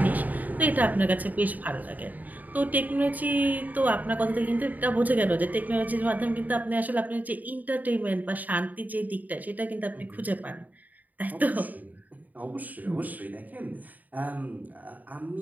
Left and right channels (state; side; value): late; left; 0.080 ms